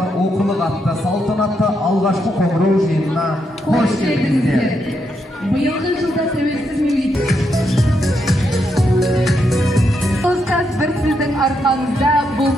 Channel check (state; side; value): normal; both; correlation 0.80